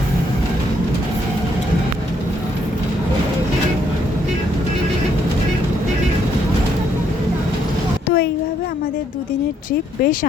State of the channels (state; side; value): normal; both; correlation 0.71